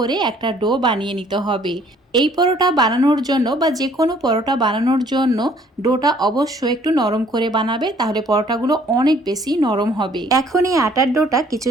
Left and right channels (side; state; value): both; normal; correlation 0.59